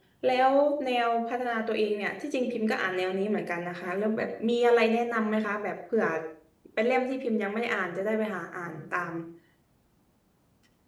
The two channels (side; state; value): both; identical; correlation 1.00